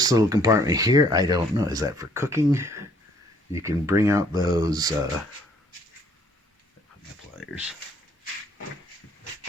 little compartment here, I don't know. Is that for cooking? You can bring out those my pliers.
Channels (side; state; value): both; normal; correlation 0.62